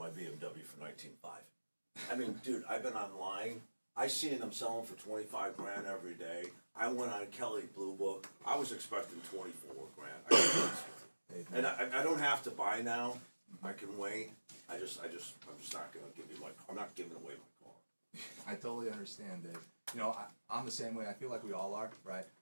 BMW for $19,500. I mean, dude, I've been online. I seen them selling for $25 grand every day. I went on Kelly Blue Book. I was expecting $24 grand. And I don't have to buy now. I can wait. I'm just not gonna give you I'm not giving away my car. I totally understand, Dave. You know, I'm the same way. I feel like we all are, right?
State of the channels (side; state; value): both; inverted; correlation -1.00